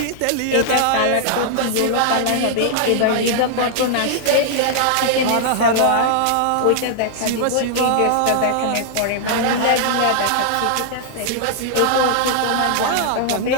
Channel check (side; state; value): both; different; correlation -0.01